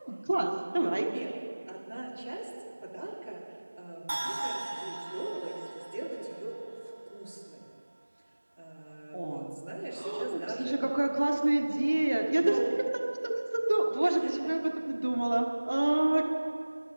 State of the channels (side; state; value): both; inverted; correlation -1.00